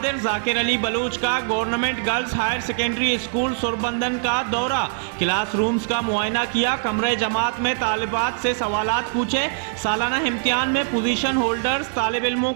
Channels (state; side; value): silent; left; 60 dB below the other